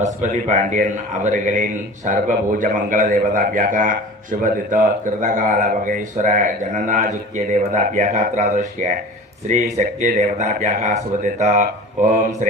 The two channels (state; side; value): normal; both; correlation 0.38